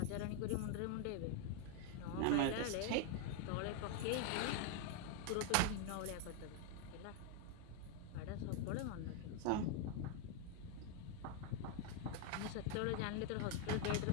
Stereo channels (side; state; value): both; different; correlation 0.01